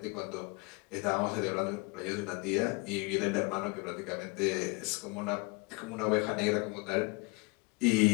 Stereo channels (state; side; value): quieter; right; 28.8 dB